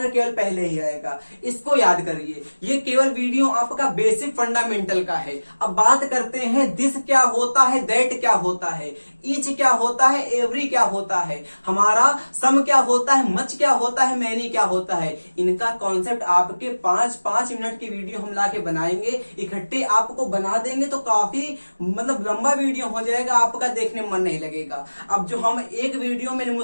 केवल पहले ही आएगा। इसको याद करिए, ये केवल वीडियो आपका बेसिक फंडामेंटल का है। अब बात करते हैं दिस क्या होता है, दैट क्या होता है, ईच क्या होता है, एवरी क्या होता है, हमारा सम क्या होता है, मच क्या होता है, मैनी क्या होता है। इनका कॉन्सेप्ट आपके 5-5 मिनट की वीडियो हम लाके बनाएंगे, इकट्ठे आपको बना देंगे, तो काफी मतलब लंबा वीडियो हो जाएगा, आपका देखने में मन नहीं लगेगा। अब जो हम एक वीडियो में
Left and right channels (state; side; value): inverted; both; correlation -1.00